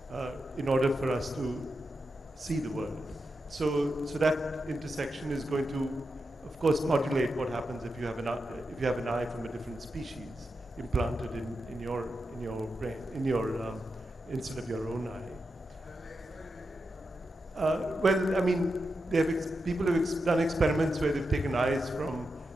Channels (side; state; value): both; normal; correlation 0.88